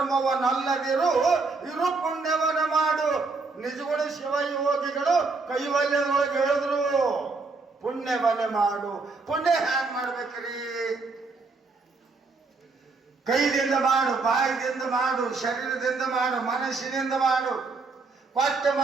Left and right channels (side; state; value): left; quieter; 4.0 dB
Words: ಇರು ಪುಣ್ಯವನ್ನು ಮಾಡು. ನಿಜಗಳು ಶಿವ ಯೋಗಿಗಳು ಕೈವಲ್ಯದೊಳಗೆ ಹೇಳಿದ್ರು, ಪುಣ್ಯವನ್ನೇ ಮಾಡು. ಪುಣ್ಯ ಹ್ಯಾಂಗ್ ಮಾಡ್ಬೇಕ್ರಿ? ಕೈದಿಂದ ಮಾಡು, ಬಾಯಿದಿಂದ ಮಾಡು, ಶರೀರದಿಂದ ಮಾಡು, ಮನಸ್ಸಿನಿಂದ ಮಾಡು. ಕೊಟ್ಟು